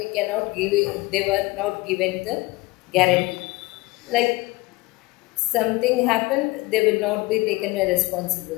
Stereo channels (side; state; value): right; quieter; 22.1 dB